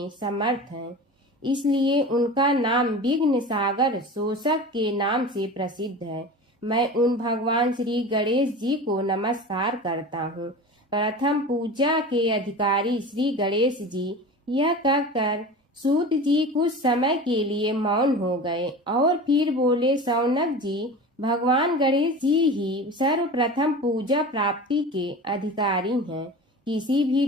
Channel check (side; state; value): both; normal; correlation 0.33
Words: समर्थ हैं। इसलिए उनका नाम विघ्न सागर शोषक के नाम से प्रसिद्ध है। मैं उन भगवान श्री गणेश जी को नमस्कार करता हूँ। प्रथम पूजा के अधिकारी श्री गणेश जी, यह कहकर सूत जी कुछ समय के लिए मौन हो गए और फिर बोले, शौनक जी, भगवान गणेश जी ही सर्वप्रथम पूजा प्राप्ति के अधिकारी हैं। किसी भी